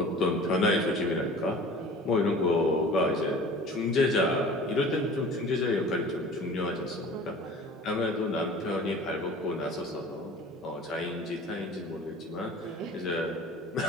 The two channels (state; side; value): normal; both; correlation 0.43